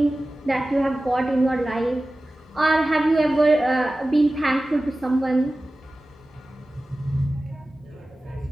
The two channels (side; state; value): both; normal; correlation 0.96